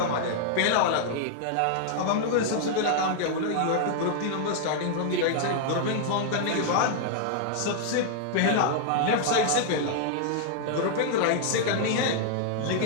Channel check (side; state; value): both; different; correlation 0.00